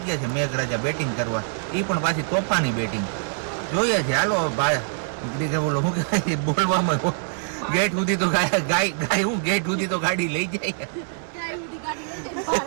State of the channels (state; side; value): silent; left; 62 dB below the other